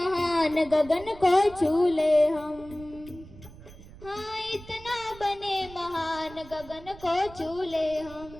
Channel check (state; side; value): noise; right; rumble, 18 dB below the sound